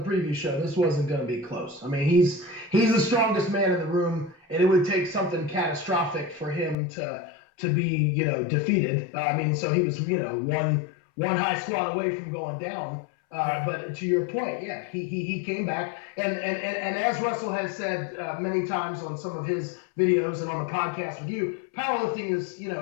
previous show, this wasn't going to be close. I mean, he's the strongest man in the room, and it would take something catastrophic for him to be defeated. So he was one high squat away from going down. But to your point, yeah, he came back, and as Russell has said many times on some of his videos and on the podcast with you, powerlifting is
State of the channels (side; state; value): right; drops out; at 6.8 s